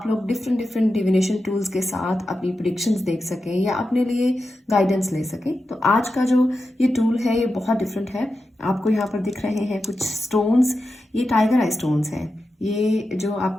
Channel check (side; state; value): both; normal; correlation 0.90